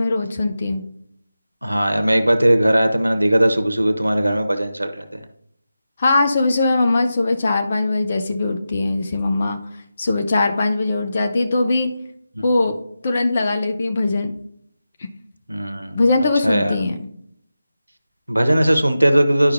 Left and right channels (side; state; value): both; inverted; correlation -0.92